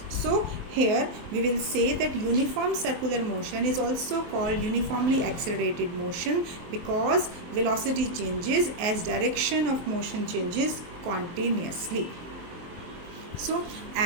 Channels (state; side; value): late; left; 23 ms